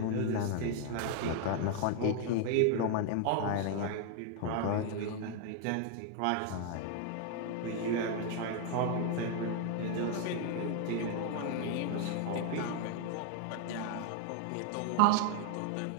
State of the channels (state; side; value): different; both; correlation 0.00